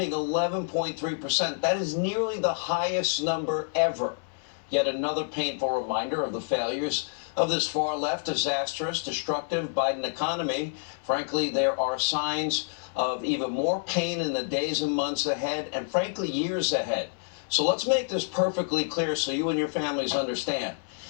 11.3%. That is nearly the highest number ever. Yet another painful reminder of the failures of this far-left, disastrous, destructive Biden economy. Frankly, there are signs of even more pain in the days and months ahead, and frankly, years ahead. So let's make this perfectly clear so you and your families understand.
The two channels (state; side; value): silent; right; digital silence